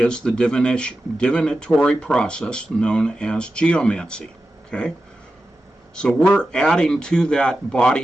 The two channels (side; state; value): both; normal; correlation 0.92